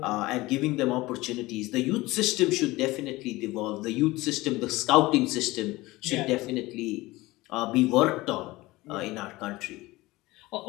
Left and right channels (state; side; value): quieter; right; 19.9 dB